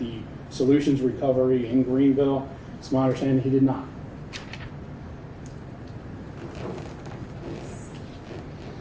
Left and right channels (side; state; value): both; identical; correlation 1.00